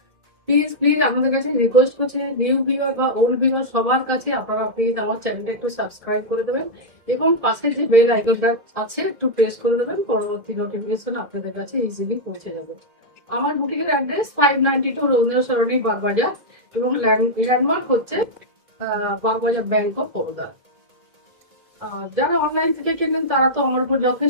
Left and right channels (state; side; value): late; left; 2.0 ms